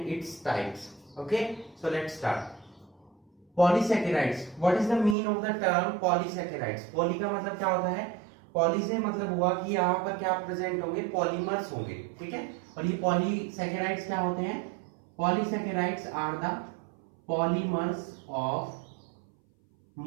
its types. Okay, so let's start. Polysaccharides. What is the meaning of the term polysaccharides? Poly का मतलब क्या होता है? Poly से मतलब हुआ कि यहाँ पर क्या प्रेजेंट होंगे, पॉलीमर्स होंगे, ठीक है। और ये पॉलीसैकेराइड्स क्या होते हैं? Polysaccharides are the polymers of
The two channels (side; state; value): left; drops out; at 5.2 s